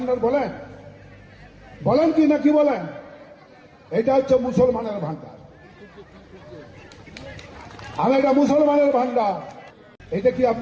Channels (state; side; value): identical; both; correlation 1.00